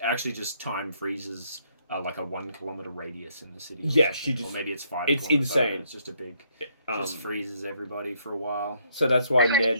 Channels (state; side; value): inverted; both; correlation -0.70